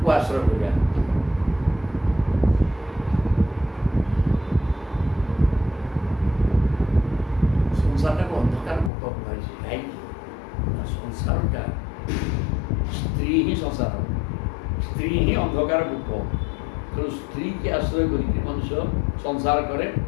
ଆଶ୍ରୟ କରିବା। ସଂସାରଟାକୁ ଅନ୍ଧକାର କୂପ କୁହାଯାଇଛି। କାହିଁକି? ସଂସାରଟା ସ୍ତ୍ରୀ ହିଁ ସଂସାର, ସ୍ତ୍ରୀ ହିଁ ଅନ୍ଧକାର କୂପ। ତେଣୁ ସ୍ତ୍ରୀକି ଆଶ୍ରୟ କରିକି ମନୁଷ୍ୟ ସଂସାର କରେ।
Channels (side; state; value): right; drops out; at 8.9 s